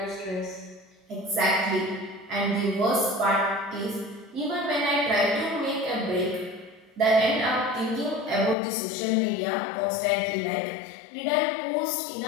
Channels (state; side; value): drops out; right; at 8.6 s